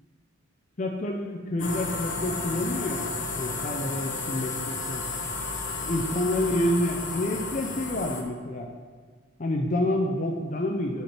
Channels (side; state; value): both; normal; correlation 0.52